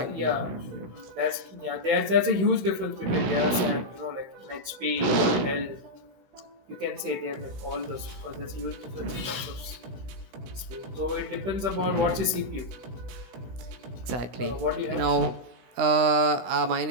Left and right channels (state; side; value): late; left; 16 ms